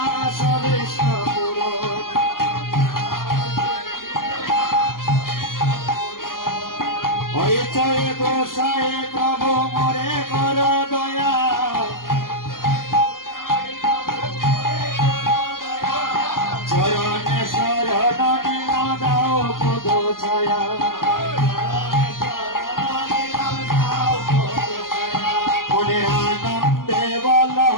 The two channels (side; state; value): right; late; 0.91 ms